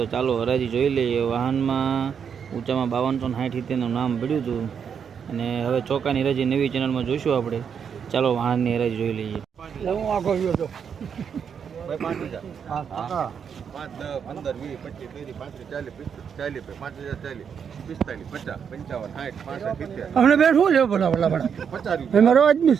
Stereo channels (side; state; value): left; quieter; 7.2 dB